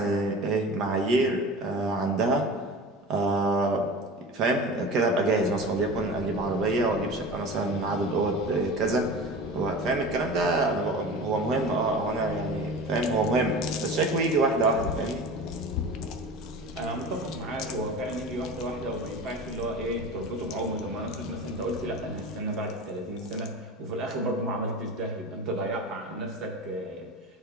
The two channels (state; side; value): normal; both; correlation 0.34